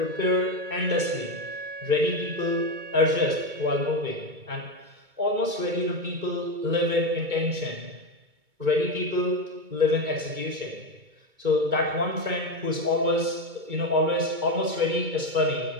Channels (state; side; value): late; left; 2.2 ms